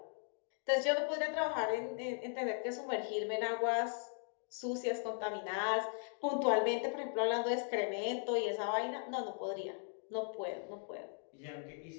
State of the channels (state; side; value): silent; right; 52 dB below the other